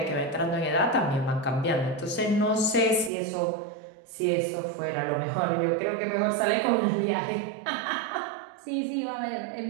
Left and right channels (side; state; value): left; drops out; at 3.1 s